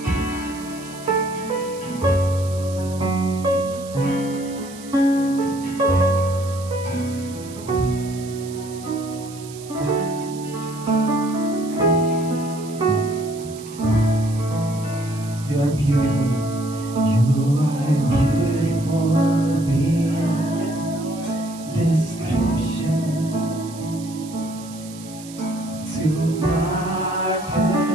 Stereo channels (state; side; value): noise; right; hiss, 17 dB below the sound